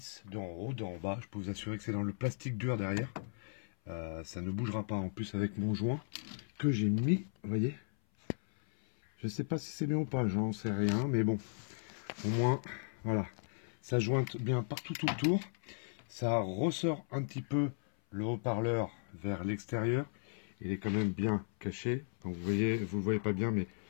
deux en haut, deux en bas. Je peux vous assurer que c'est dans le plastique dur derrière. Ça ne bougera pas. En plus, avec mon joint que j'ai mis, vous voyez. Je sais pas si c'est bien ou pas, j'en sais rien, mais bon, au moins, voilà, ça jointe bien partout tout autour, ça ressort un petit peu le haut-parleur vers l'extérieur, il est quand même bien caché, donc vous voyez, vous le voyez pas bien, mais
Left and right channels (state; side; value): silent; right; 54 dB below the other